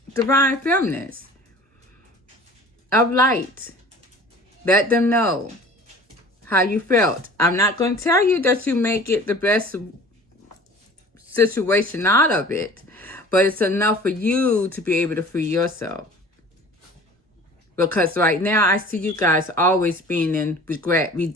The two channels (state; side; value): normal; both; correlation 0.45